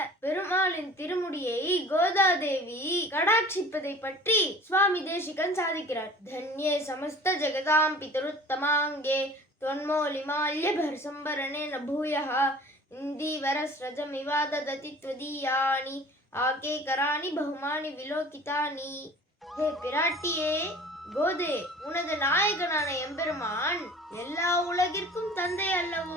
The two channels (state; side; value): normal; both; correlation 0.45